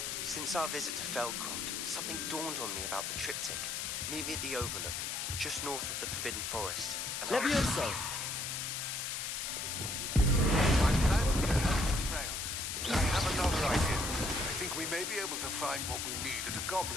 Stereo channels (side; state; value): left; noise; hiss, 2 dB below the sound